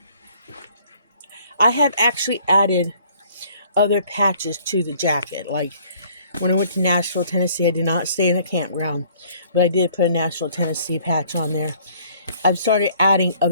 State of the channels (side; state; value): both; inverted; correlation -0.59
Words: I have actually added other patches to the jacket. Like when I went to Nashville, Tennessee, I did not stay in a campground, but I did put a Nashville, Tennessee patch on there. I've started adding